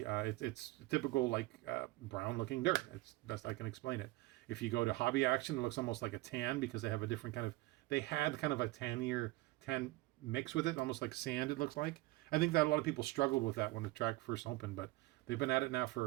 it's typical like brown looking dirt. It's best I can explain it. If you go to Hobby Action, it looks almost like a tan because they have a different they had kind of a tan mix with it, almost like sand it looks like. I think that a lot of people struggled with that when the track first opened, but they've been at it now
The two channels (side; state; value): left; quieter; 19.7 dB